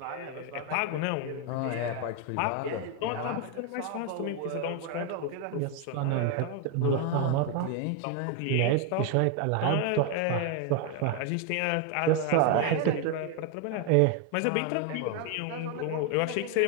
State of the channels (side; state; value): both; different; correlation 0.01